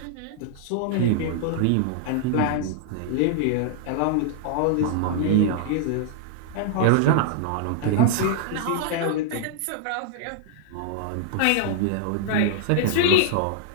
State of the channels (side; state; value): both; different; correlation -0.01